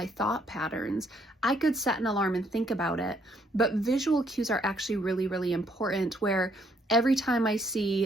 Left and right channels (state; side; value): normal; both; correlation 0.69